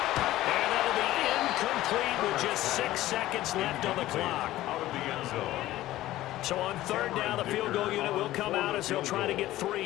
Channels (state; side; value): quieter; right; 15.4 dB